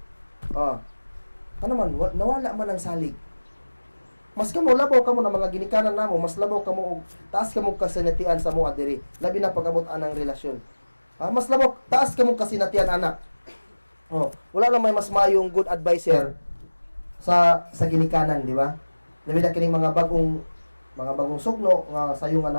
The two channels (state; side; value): inverted; both; correlation -1.00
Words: Ano man, nawala man ang salig. Mas kamo labaw kamo na mga ginikanan namo, mas labaw kamo og taas kamo kasinatian sa mo adiri, labi na pag-abot anang relasyon. Mas labaw taas kamo kasinatian ana. Wala lang may mas mayong good advisor sa ginikanan, di ba? Labi na kining mga bagong sugno nga sayo